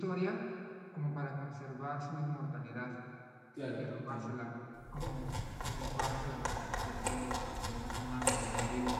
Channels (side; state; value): both; identical; correlation 1.00